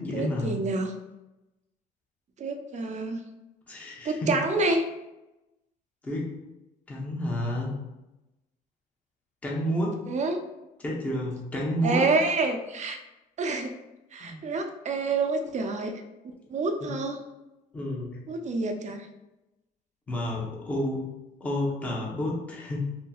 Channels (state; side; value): normal; both; correlation 0.49